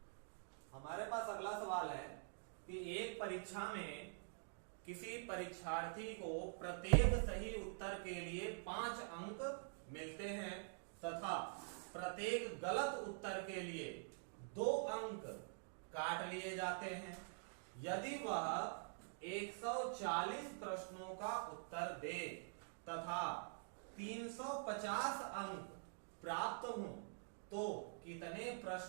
हमारे पास अगला सवाल है कि एक परीक्षा में किसी परीक्षार्थी को प्रत्येक सही उत्तर के लिए 5 अंक मिलते हैं तथा प्रत्येक गलत उत्तर के लिए 2 अंक काट लिए जाते हैं। यदि वह 140 प्रश्नों का उत्तर दे तथा 350 अंक प्राप्त हों तो कितने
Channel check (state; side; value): silent; left; digital silence